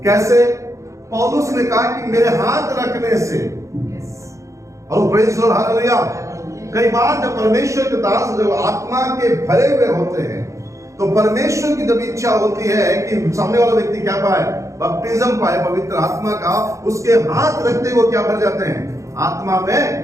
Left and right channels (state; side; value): late; left; 0.15 ms